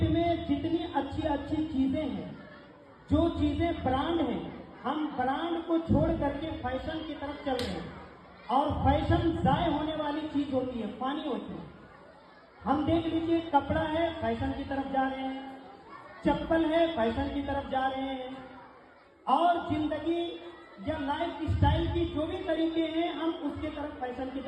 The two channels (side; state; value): both; identical; correlation 1.00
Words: में जितनी अच्छी अच्छी चीजें हैं, जो चीजें ब्रांड हैं, हम ब्रांड को छोड़ करके फैशन की तरफ चल रहे हैं। और फैशन जाय होने वाली चीज होती है, पानी होती है। हम देख लीजिए, कपड़ा है फैशन की तरफ जा रहे हैं, चप्पल है फैशन की तरफ जा रहे हैं, और जिंदगी या लाइफ स्टाइल की जो भी तरीके हैं हम उसके तरफ फैशन की